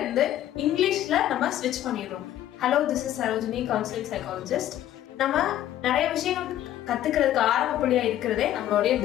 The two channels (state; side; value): quieter; right; 12.5 dB